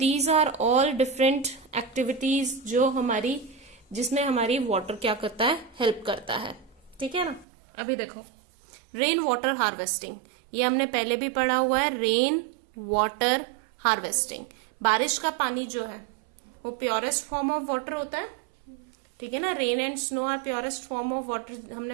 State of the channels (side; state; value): left; drops out; at 7.5 s